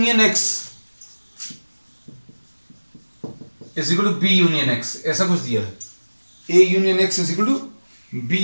X is equal to B union X, ऐसा कुछ दिया है। A union X is equal to B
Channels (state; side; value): inverted; both; correlation -1.00